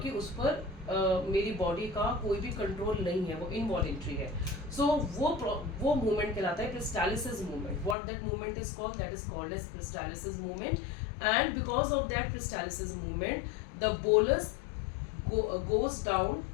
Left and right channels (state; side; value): drops out; right; at 8.0 s